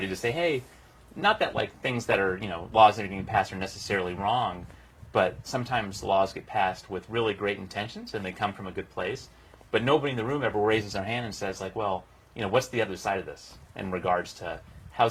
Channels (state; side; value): identical; both; correlation 1.00